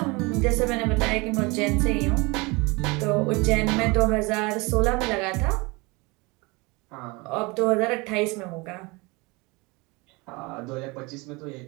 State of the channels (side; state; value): left; quieter; 25.9 dB